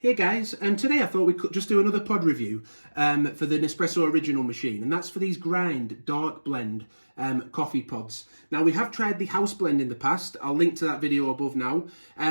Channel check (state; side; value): inverted; both; correlation -1.00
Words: guys, today I thought we could just do another pod review for the Nespresso original machine, and that's for these Grind Dark Blend coffee pods. Now we have tried the house blend in the past, I'll link to that video above now,